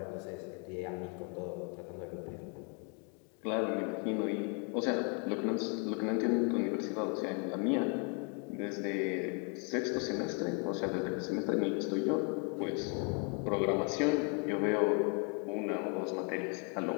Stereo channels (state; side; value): quieter; right; 37.3 dB